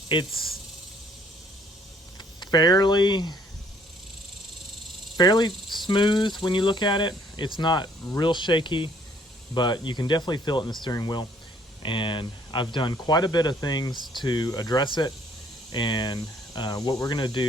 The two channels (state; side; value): normal; both; correlation 0.62